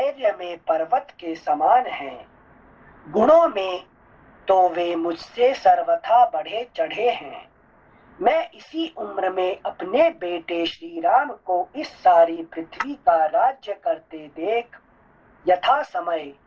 में पर्वत के समान हैं। गुणों में तो वे मुझसे सर्वथा बढ़े चढ़े हैं। मैं इसी उम्र में अपने बेटे श्री राम को इस सारी पृथ्वी का राज्य करते देख यथा समय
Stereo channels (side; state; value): both; identical; correlation 1.00